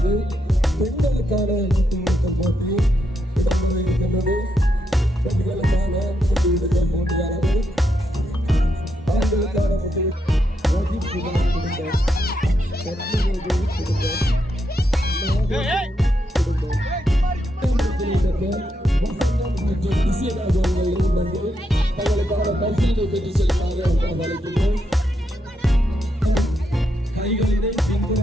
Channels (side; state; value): both; normal; correlation 0.81